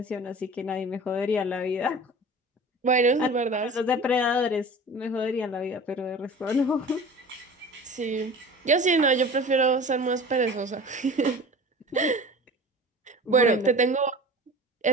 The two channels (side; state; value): both; normal; correlation 0.39